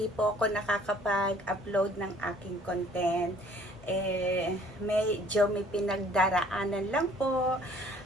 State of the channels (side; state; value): both; normal; correlation 0.56